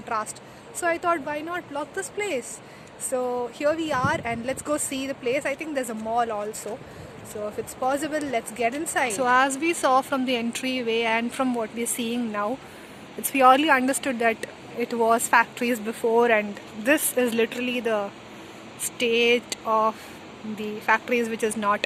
So I thought, why not block this place? So here we are, and let's go see the place. I think there's a mall also. So if it's possible, let's get inside. So as we saw from the entryway and from what we're seeing now, it's purely understood that it was factories before, and this is literally the state of the factories which is not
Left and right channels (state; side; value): identical; both; correlation 1.00